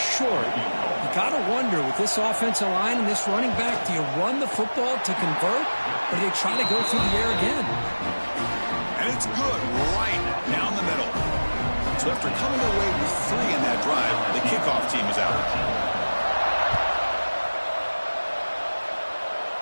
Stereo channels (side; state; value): both; inverted; correlation -1.00